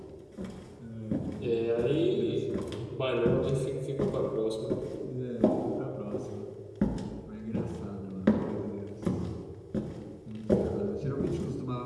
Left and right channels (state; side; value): identical; both; correlation 1.00